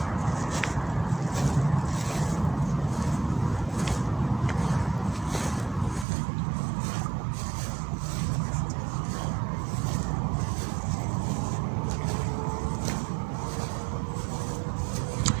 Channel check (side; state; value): left; drops out; at 6.1 s